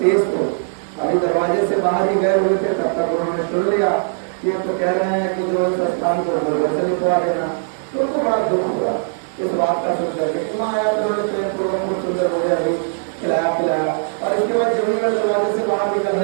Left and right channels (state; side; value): silent; left; digital silence